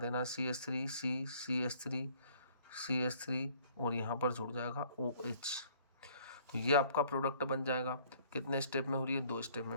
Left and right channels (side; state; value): both; inverted; correlation -0.58